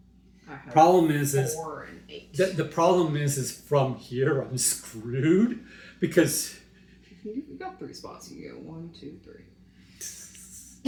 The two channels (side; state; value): both; identical; correlation 1.00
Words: I have Problem is 4 and 8. the problem is from here I'm screwed because You've got 3 spots. You go 1, 2, 3.